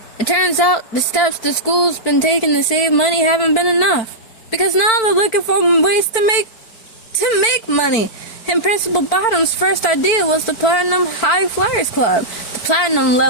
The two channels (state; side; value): late; right; 4.5 ms